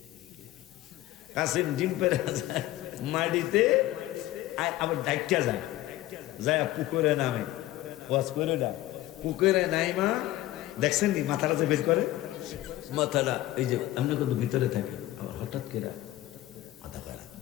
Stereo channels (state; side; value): quieter; right; 15.9 dB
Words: কাসিম ডিম পাইরা যায় মাটিতে, আবার ডাইকা যায় পুকুরে নামে, ওয়াজ করে না, পুকুরে নাইমা দেখছেন নি মাথাটা যে বের করে, মাথাটা এই যে আমরা কিন্তু ভিতরে থাকি, আবার হঠাৎ করে